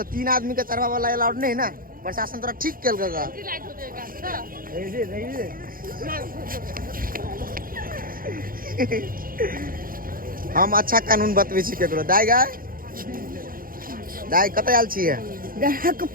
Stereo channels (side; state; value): left; late; 0.41 ms